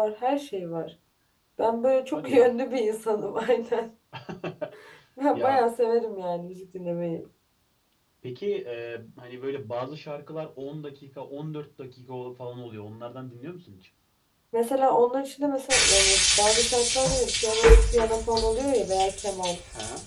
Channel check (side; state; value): both; identical; correlation 1.00